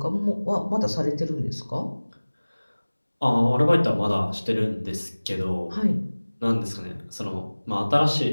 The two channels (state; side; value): inverted; both; correlation -1.00